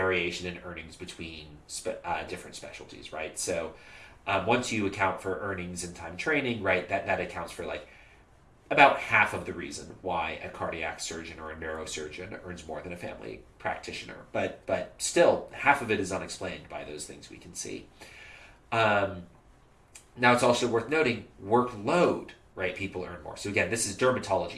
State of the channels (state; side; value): identical; both; correlation 1.00